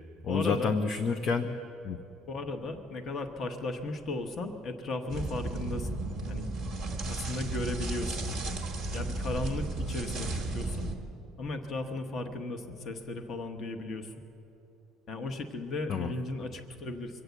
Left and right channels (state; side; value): normal; both; correlation 0.66